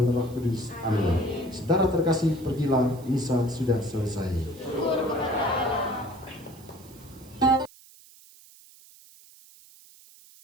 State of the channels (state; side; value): noise; right; hiss, 23 dB below the sound